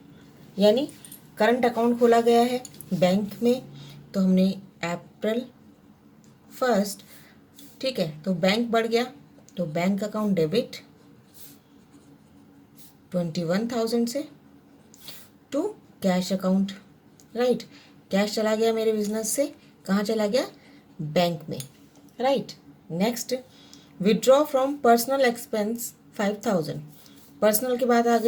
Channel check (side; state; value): both; identical; correlation 1.00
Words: यानी करंट अकाउंट खोला गया है बैंक में। तो हमने अप्रैल 1, ठीक है, तो बैंक बढ़ गया, तो बैंक अकाउंट डेबिट 21,000 से to cash account. Right, cash चला गया मेरे बिजनेस से, कहाँ चला गया, बैंक में। Right, next withdraw from personal expense 5,000। Personal की बात आ